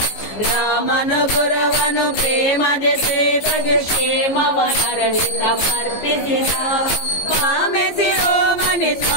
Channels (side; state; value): right; late; 15 ms